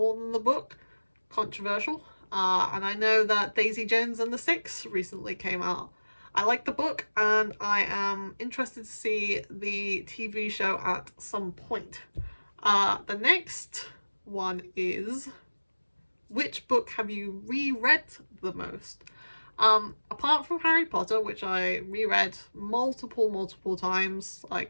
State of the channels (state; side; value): inverted; both; correlation -1.00